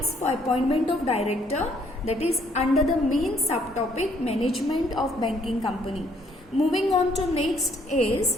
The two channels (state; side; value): normal; both; correlation 0.66